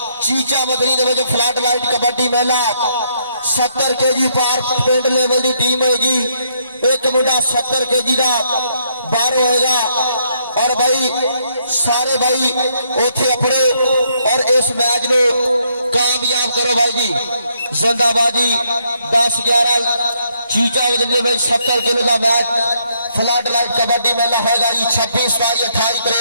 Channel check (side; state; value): both; inverted; correlation -0.73